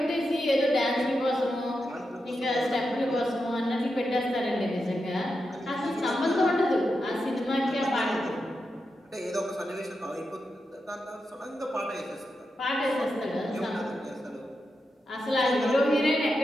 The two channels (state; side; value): normal; both; correlation 0.88